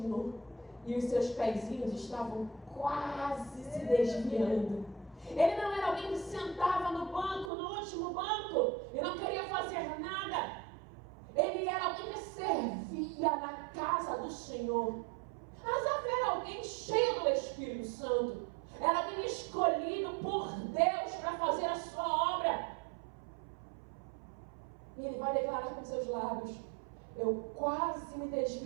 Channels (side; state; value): left; drops out; at 7.5 s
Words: E os seus pezinhos estavam quase se desviando. Ele não era alguém que sentava no banco, no último banco, e não queria fazer nada. Ele era alguém que servia na casa do Senhor. Asaf era alguém cheio do Espírito Santo. Era alguém escolhido por Deus para fazer a sua obra. E ele vai declarar com seus lábios: eu quase me